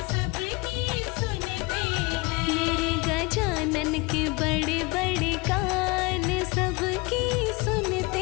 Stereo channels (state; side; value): quieter; right; 25.2 dB